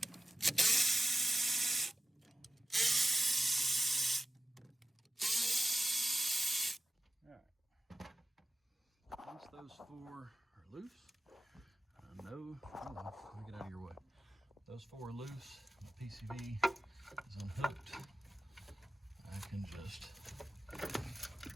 Once those 4 are loose, no, hold on, let me get out of your way. Those 4 are loose, the PCV is unhooked. I can just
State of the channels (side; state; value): both; normal; correlation 0.93